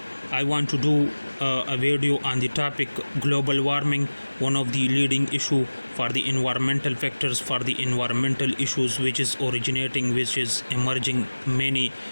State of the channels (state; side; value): inverted; both; correlation -1.00